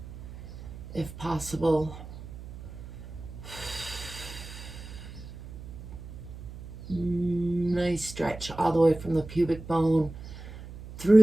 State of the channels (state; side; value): noise; right; hum, 13 dB below the sound